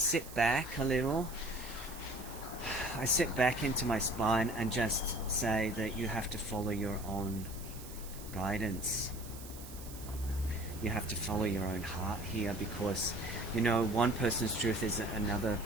back a little, I sit back into my spine and just say that you have to follow your own guidance. You have to follow your own heart here, because you know, one person's truth is another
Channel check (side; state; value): right; noise; hiss, 15 dB below the sound